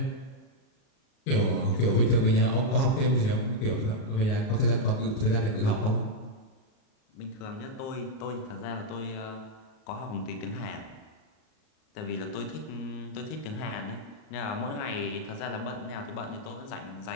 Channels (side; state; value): right; late; 38 ms